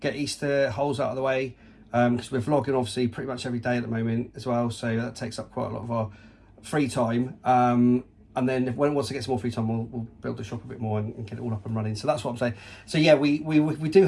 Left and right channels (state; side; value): identical; both; correlation 1.00